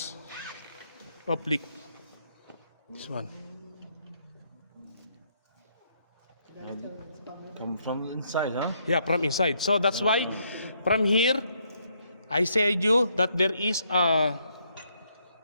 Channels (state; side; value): inverted; both; correlation -0.73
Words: of leak. This one. Come from inside, huh? Yeah, from inside. So that's why from here I said you that there is a